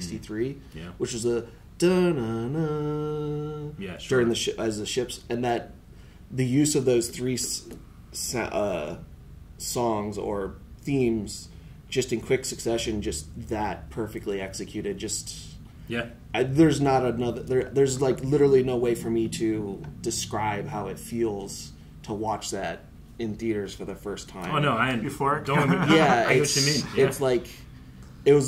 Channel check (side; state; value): both; identical; correlation 1.00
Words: which was a da-na-na during as the ships. And that the use of those 3 songs or themes just in quick succession, just that perfectly executed. Just Yeah. There's not another. There's like literally no way for me to describe how it feels to watch that in theaters for the first time. Oh no, Before? Don't. Yeah, I know what you mean. Yeah. It's like it